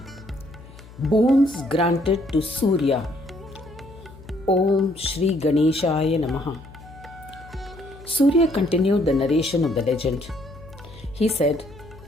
Boons granted to Surya. Om Shri Ganeshaya Namaha. Surya continued the narration of the legend. He said,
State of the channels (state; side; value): noise; left; hum, 20 dB below the sound